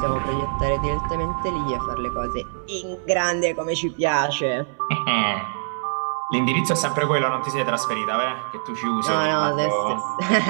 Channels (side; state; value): left; silent; digital silence